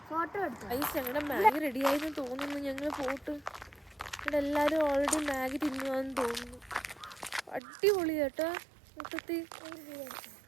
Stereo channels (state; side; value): drops out; left; at 7.6 s